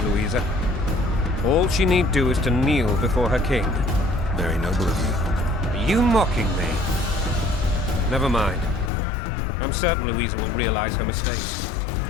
Louisa. All she need do is to kneel before her king. Very noble of you. Are you mocking me? Never mind. I'm certain Louisa will realize her mistakes.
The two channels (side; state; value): right; drops out; at 8.9 s